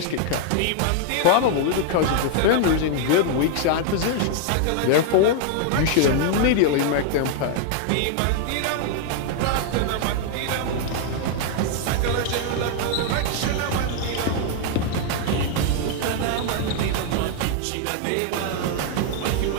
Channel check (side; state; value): both; different; correlation 0.00